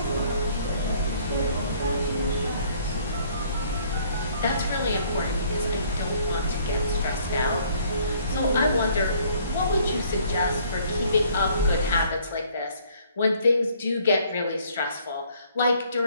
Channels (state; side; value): inverted; both; correlation -0.60